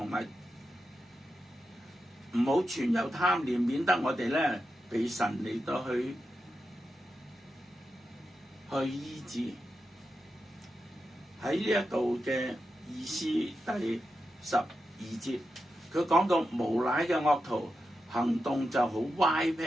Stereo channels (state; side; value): normal; both; correlation 0.88